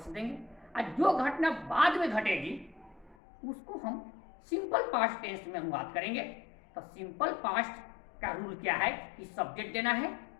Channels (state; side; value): drops out; right; at 3.2 s